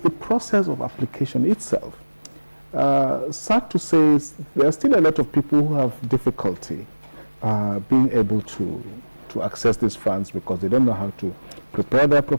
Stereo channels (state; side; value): inverted; both; correlation -1.00